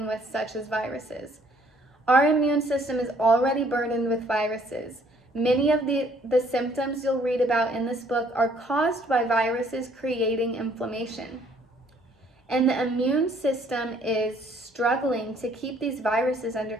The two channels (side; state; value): both; normal; correlation 0.62